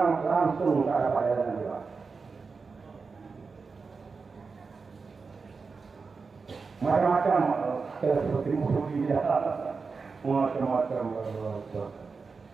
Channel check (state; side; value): quieter; left; 4.7 dB